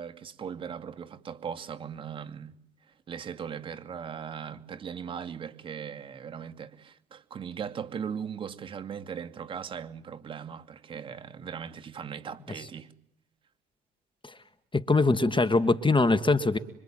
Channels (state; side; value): normal; both; correlation 0.71